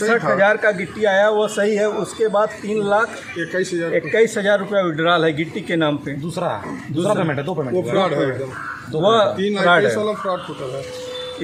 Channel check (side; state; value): both; identical; correlation 1.00